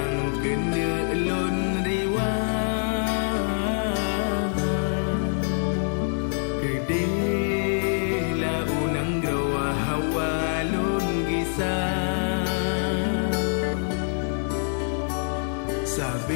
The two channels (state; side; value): silent; right; digital silence